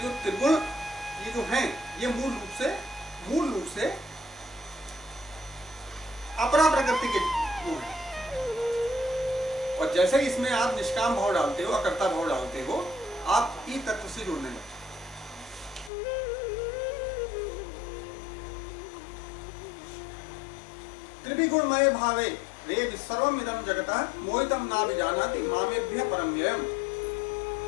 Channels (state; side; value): drops out; right; at 15.9 s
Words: जो त्रिगुण ये जो हैं ये मूल रूप से अपरा प्रकृति के गुण हैं। और जैसे ही इसमें आप निष्काम भाव डालते हो, अकर्ता भाव डालते हो, आप ई तत्व से जुड़ने लगते। त्रिविगुणमय भावे रे सर्वम इदं जगतः मोहितम ना विजानाति मामेभ्यः परम व्ययम्।